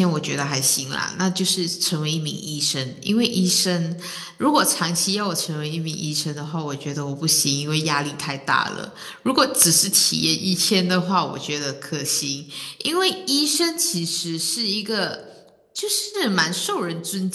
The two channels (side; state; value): both; identical; correlation 1.00